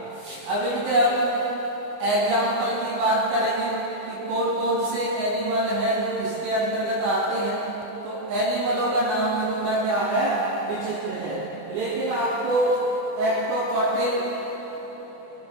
अब इनके एग्जाम्पल की बात करेंगे कि कौन कौन से एनिमल है इसके अंतर्गत आते हैं। तो एनिमलों का नाम थोड़ा क्या है? विचित्र है, लेकिन आपको एक्टोकॉटिल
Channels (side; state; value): left; late; 24 ms